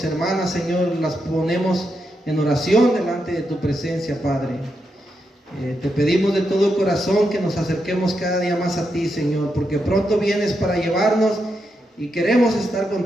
hermanas, Señor. Las ponemos en oración delante de tu presencia, Padre. Te pedimos de todo corazón que nos acerquemos cada día más a ti, Señor, porque pronto vienes para llevarnos y queremos estar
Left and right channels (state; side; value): normal; both; correlation 0.84